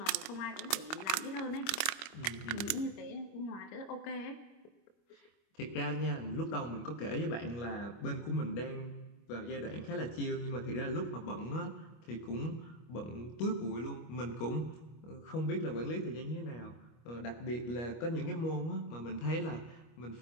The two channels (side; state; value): right; late; 24 ms